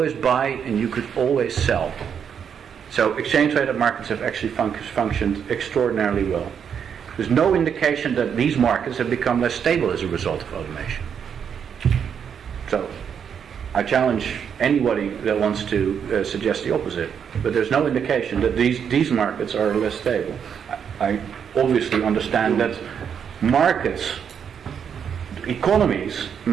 buy and you could always sell. So exchange traded markets have actually functioned extraordinarily well. There's no indication that these markets have become less stable as a result of automation. So I challenge anybody that wants to suggest the opposite, but there's no indication that these markets are less stable. I obviously understand that markets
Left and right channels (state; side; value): quieter; left; 7.6 dB